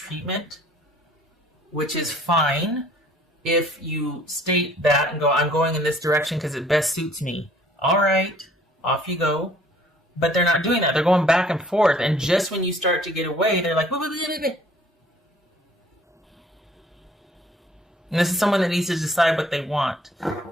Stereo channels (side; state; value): both; normal; correlation 0.56